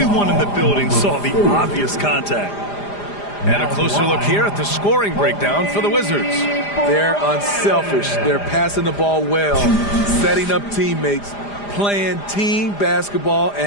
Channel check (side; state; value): right; late; 4.9 ms